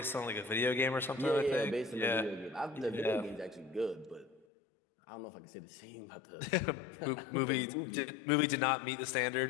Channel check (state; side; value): drops out; right; at 4.5 s